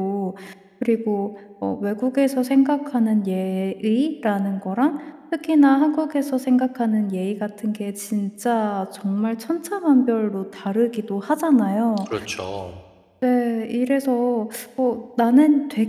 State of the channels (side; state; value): both; identical; correlation 1.00